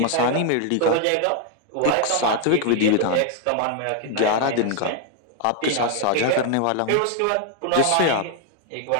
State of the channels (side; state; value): both; different; correlation 0.00